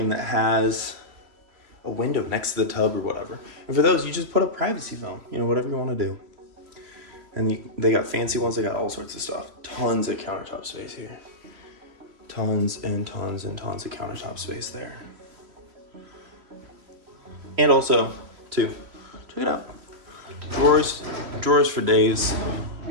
that has a window next to the tub or whatever? And for those, you just put a privacy film, you know, whatever you want to do. And they got fancy ones, they got all sorts of stuff. Tons of countertop space here. Tons and tons and tons of countertop space there. And also, too, check it out. Drawers for days.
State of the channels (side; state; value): left; late; 3.1 ms